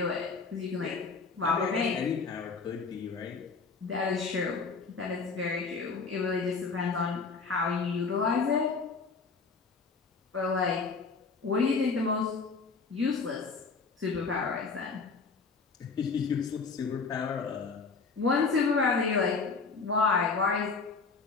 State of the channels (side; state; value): right; quieter; 4.6 dB